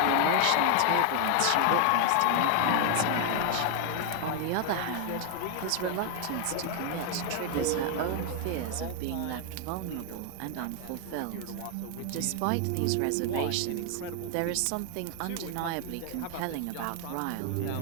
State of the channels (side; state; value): both; different; correlation 0.00